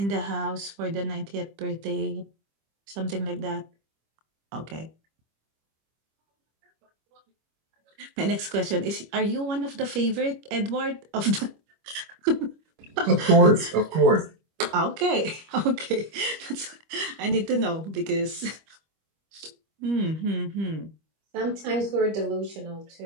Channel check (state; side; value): late; left; 25 ms